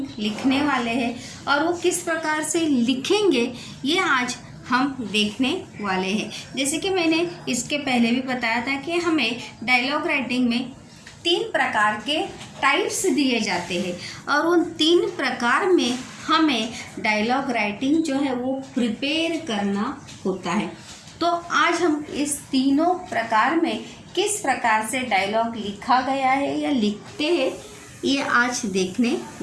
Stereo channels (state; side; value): identical; both; correlation 1.00